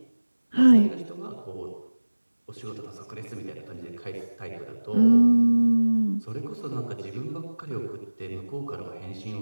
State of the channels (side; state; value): both; inverted; correlation -1.00